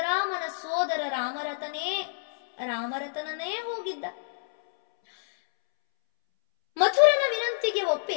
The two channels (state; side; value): silent; right; 60 dB below the other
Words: ಸೋದರ ರಾಮರತನನೇ ಹೋಗಿದ್ದ. ಮಥುರನ ವಿನಂತಿಗೆ